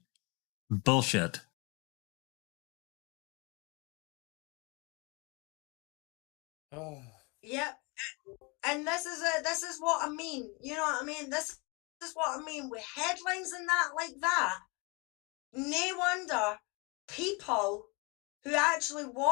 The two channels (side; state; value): right; quieter; 29.5 dB